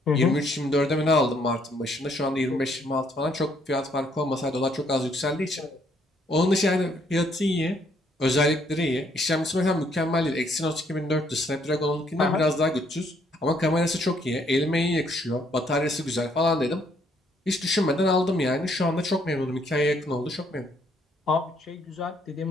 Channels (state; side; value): normal; both; correlation 0.68